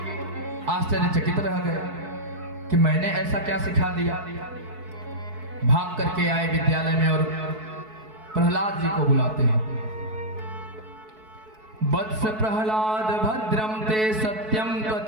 आश्चर्यचकित रह गए कि मैंने ऐसा क्या सिखा दिया। भाग करके आए विद्यालय में और प्रहलाद जी को बुलाते हैं। वत्स प्रहलाद भद्रम ते सत्यम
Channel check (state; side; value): late; left; 4.6 ms